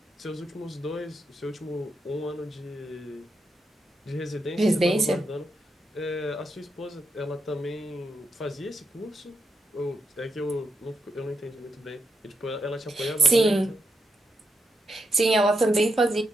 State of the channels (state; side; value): normal; both; correlation 0.84